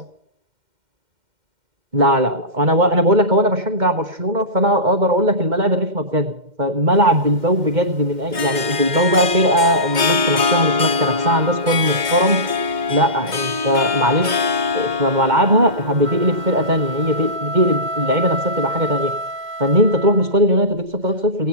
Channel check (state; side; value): late; left; 2.1 ms